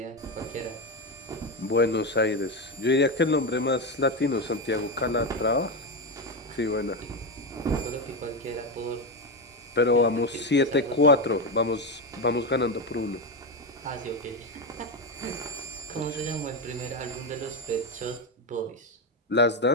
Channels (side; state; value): both; normal; correlation 0.12